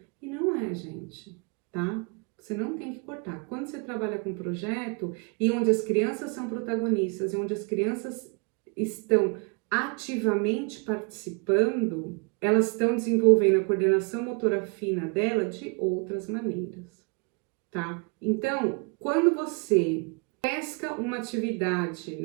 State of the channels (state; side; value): quieter; left; 34.2 dB